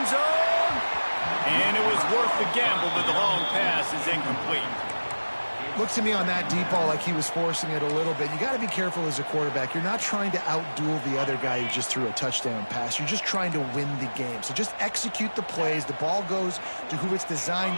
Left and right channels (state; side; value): inverted; both; correlation -1.00